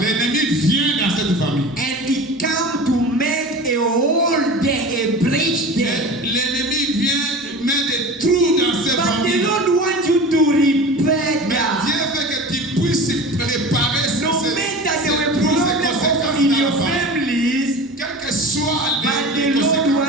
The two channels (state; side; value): normal; both; correlation 0.35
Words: l'ennemi vient dans cette famille. And it come to make a hole there, a breach there. L'ennemi vient mettre des trous dans cette But the famille. Lord wants you to repair Mais that. Dieu veut que tu puisses réparer ces No matter there were trous, ces problems conséquences in dans your la famille. families, Quelles que soient but les the Lord conséquences,